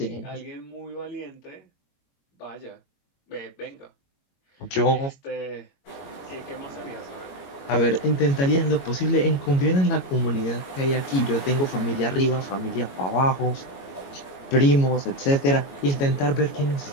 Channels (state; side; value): late; right; 22 ms